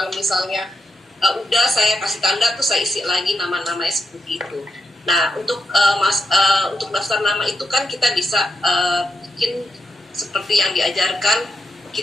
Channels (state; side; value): normal; both; correlation 0.83